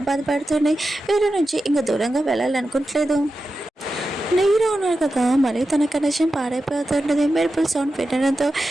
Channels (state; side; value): normal; both; correlation 0.91